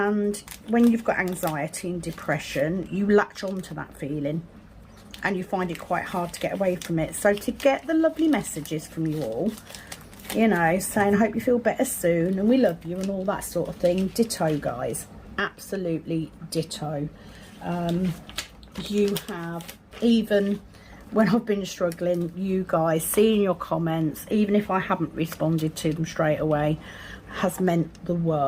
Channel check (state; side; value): identical; both; correlation 1.00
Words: when you've got anxiety and depression, you latch on to that feeling and you find it quite hard to get away from it. So to get the lovely messages from you all, you know, saying I hope you feel better soon and we love you and all that sort of thing, ditto, guys. Absolutely ditto. You have even when I've been struggling, you guys seeing your comments, even if I haven't responded to them straight away, has meant the